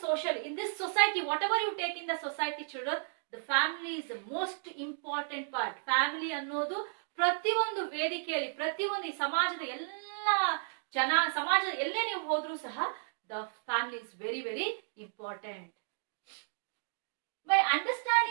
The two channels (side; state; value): left; silent; digital silence